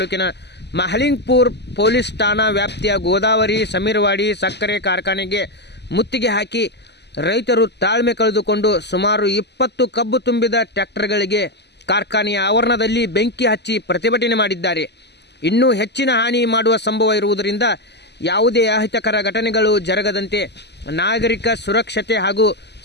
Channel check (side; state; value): right; late; 0.50 ms